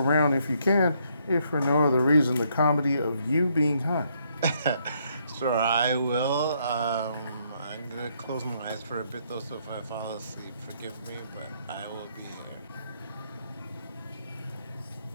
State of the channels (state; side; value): inverted; both; correlation -0.72